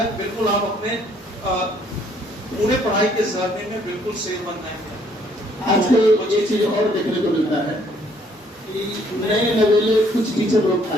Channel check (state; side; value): normal; both; correlation 0.64